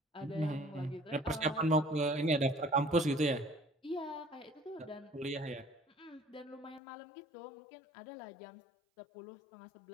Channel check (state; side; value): drops out; right; at 6.8 s